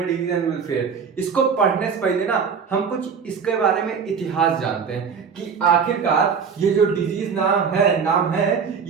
डिजीज एंड वेलफेयर। इसको पढ़ने से पहले ना हम कुछ इसके बारे में इतिहास जानते हैं कि आखिरकार ये जो डिजीज नाम है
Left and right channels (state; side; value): quieter; left; 6.2 dB